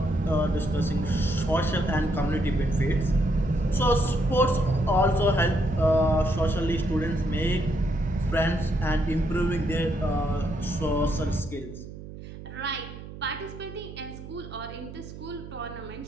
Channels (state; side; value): noise; right; hum, 13 dB below the sound